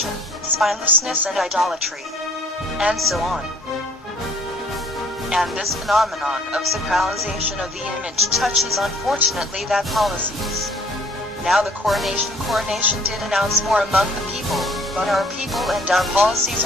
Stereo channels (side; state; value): both; normal; correlation 0.56